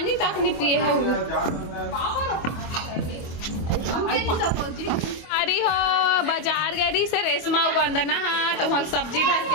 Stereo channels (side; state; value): right; late; 25 ms